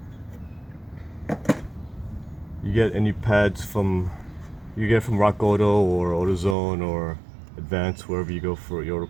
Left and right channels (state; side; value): drops out; left; at 6.6 s